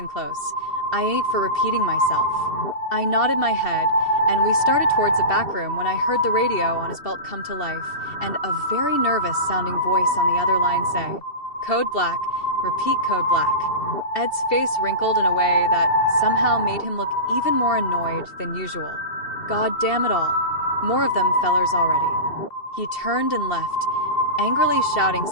close. I ain't for repeating myself." I nodded my head, and we started towards the back room when I heard the radio on his belt come to life, and a very nervous-sounding voice on the other line say, "Code black, repeat code black." Ed's face wrinkled in a way that somehow made him look even more annoyed than usual. God damn it all. More of them fellers already. He turned and left, angrily shouting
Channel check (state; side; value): late; right; 2.7 ms